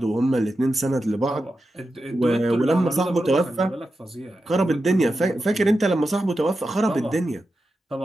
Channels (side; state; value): both; normal; correlation 0.90